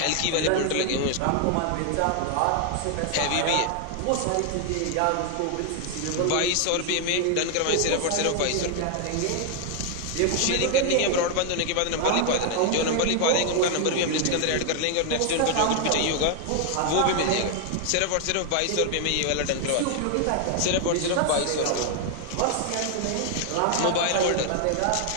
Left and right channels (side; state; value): both; different; correlation 0.00